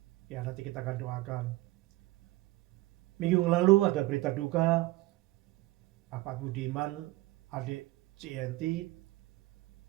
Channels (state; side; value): quieter; left; 18.8 dB